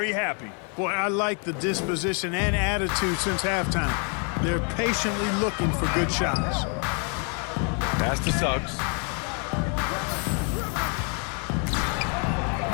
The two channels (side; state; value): right; quieter; 38.7 dB